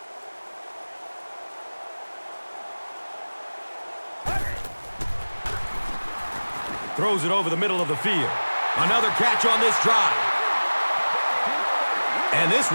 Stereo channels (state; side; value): inverted; both; correlation -1.00